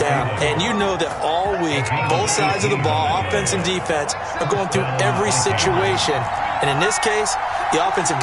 And you know that all week, both sides of the ball, offense and defense, are going through every situation. And in this case, the offensive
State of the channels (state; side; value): identical; both; correlation 1.00